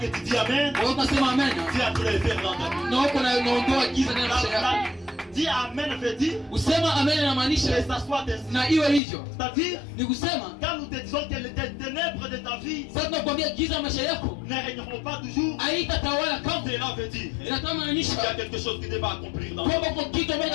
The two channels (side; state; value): right; drops out; at 9.0 s